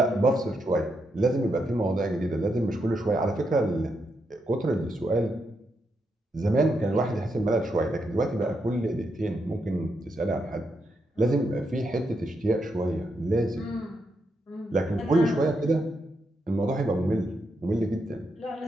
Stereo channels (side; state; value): both; normal; correlation 0.82